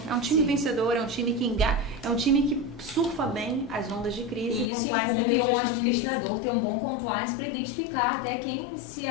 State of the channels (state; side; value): drops out; right; at 4.7 s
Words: É um time vencedor, é um time que é um time que surfa bem as ondas de crise. E isso compliance incumbe um gestão de crise. administrador ter um bom compliance para identificar até quem se